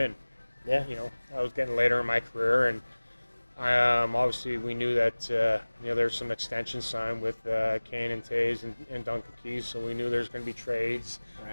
Yeah. I was getting later in my career, and obviously we knew that there's some extensions signed with Kane and Tays and Duncan Keys, so we knew there's going to be trades.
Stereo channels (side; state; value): both; inverted; correlation -1.00